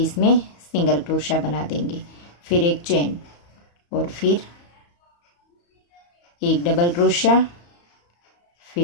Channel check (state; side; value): late; right; 34 ms